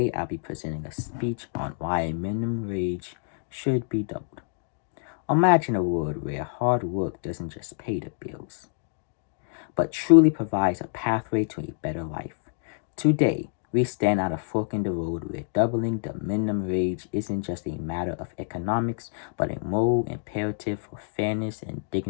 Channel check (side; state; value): right; silent; digital silence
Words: I'll be presenting a speech on why minimum wage should be doubled. Imagine a world where hard work doesn't just pay the bills, but truly provides a pathway to a better life. Today, we stand at a fork in the road where doubling the minimum wage isn't just a matter of economics, but a moral imperative for fairness and